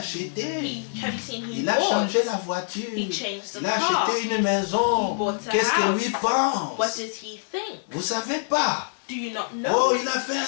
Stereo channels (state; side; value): silent; right; digital silence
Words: Have you seen he Il a changé la bought? voiture. He changed the Il a car. acheté une maison. He bought a Qu'est-ce que lui house. pense? What does he think? Vous savez pas? Do you not Oh, know? il a fait un